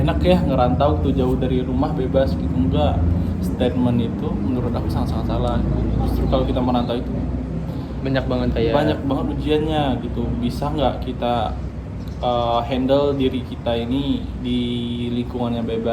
ya ngerantau tuh jauh dari rumah bebas gitu, enggak. Statement itu menurut aku sangat-sangat salah. Justru kalau kita merantau itu banyak banget ujiannya gitu. Bisa nggak kita handle diri kita ini di lingkungan yang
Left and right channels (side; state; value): both; identical; correlation 1.00